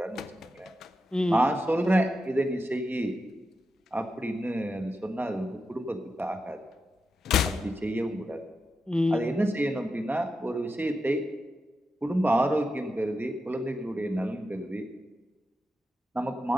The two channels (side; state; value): both; normal; correlation 0.88